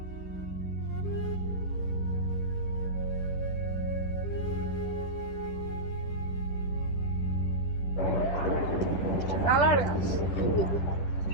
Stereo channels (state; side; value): late; right; 10 ms